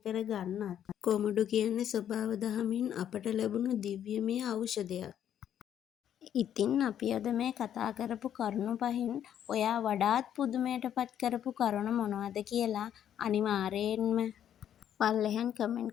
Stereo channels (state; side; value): quieter; right; 10.0 dB